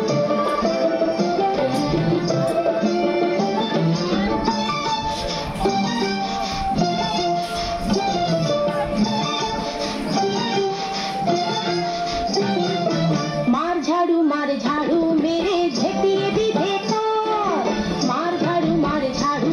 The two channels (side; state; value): both; identical; correlation 1.00